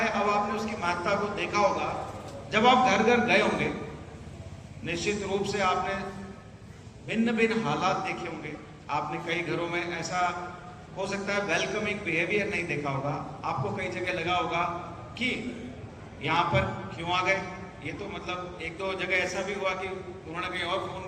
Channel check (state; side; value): identical; both; correlation 1.00